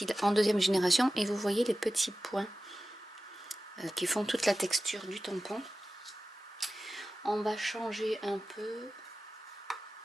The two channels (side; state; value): both; normal; correlation 0.95